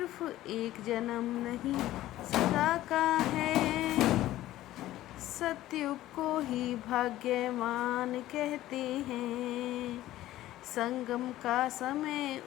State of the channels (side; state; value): right; quieter; 14.9 dB